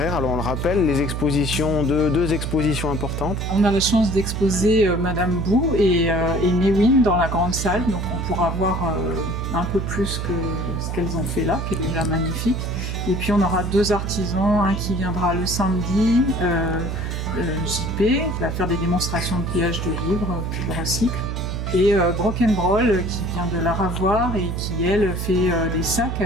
Alors on le rappelle, les expositions, deux expositions importantes. On a la chance d'exposer Madame Bou et Mewin dans la grande salle. Donc on pourra voir un peu plus que ce qu'elles ont fait là, qui est déjà magnifique. Et puis on aura deux artisans, un qui viendra le samedi, JP, qui va faire des démonstrations de pliage de livres qu'il recycle, et Broken Broll qui vient de la Ravoire et qui elle fait des sacs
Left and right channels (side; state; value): right; noise; hum, 3 dB below the sound